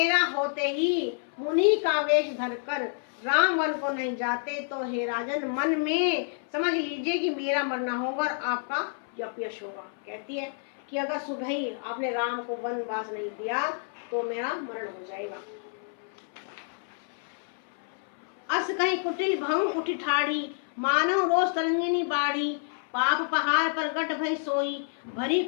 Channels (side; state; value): right; silent; 59 dB below the other